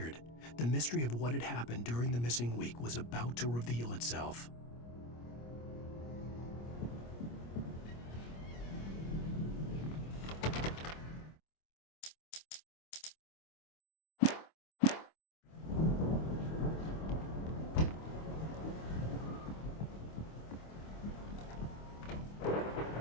The mystery of what had happened during the missing week was about to reveal itself.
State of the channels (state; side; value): late; right; 25 ms